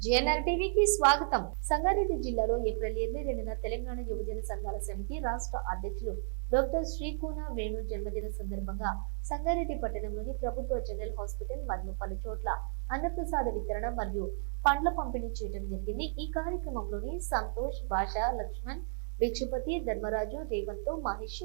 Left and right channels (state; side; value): silent; left; digital silence